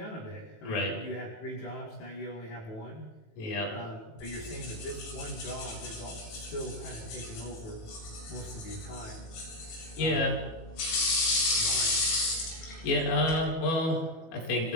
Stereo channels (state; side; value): late; right; 18 ms